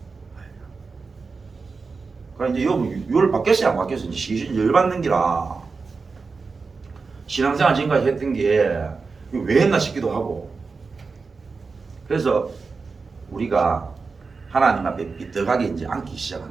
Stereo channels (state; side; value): quieter; left; 4.5 dB